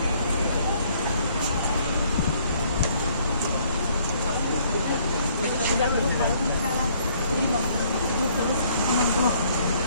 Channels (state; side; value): inverted; both; correlation -0.63